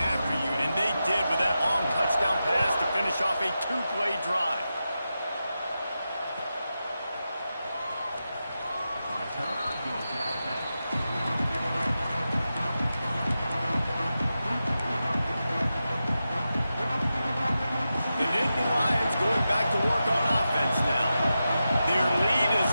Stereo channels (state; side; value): inverted; both; correlation -0.91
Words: after you, and they did with that long touchdown pass to finish off a two-play drive.